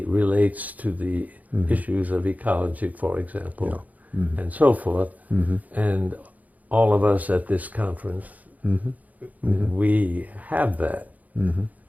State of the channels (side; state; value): left; late; 0.077 ms